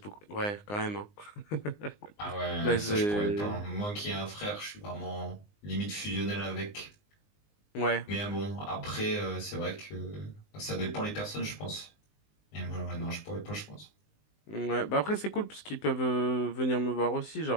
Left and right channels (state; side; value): late; right; 19 ms